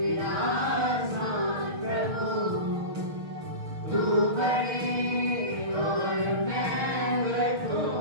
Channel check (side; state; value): left; late; 6.5 ms